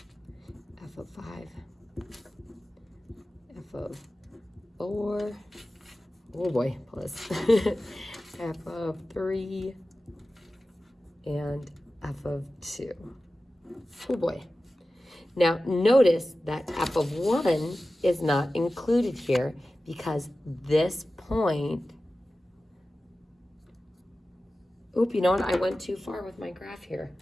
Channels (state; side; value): normal; both; correlation 0.95